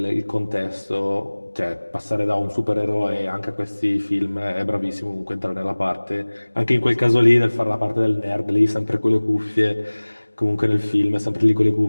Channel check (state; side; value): inverted; both; correlation -1.00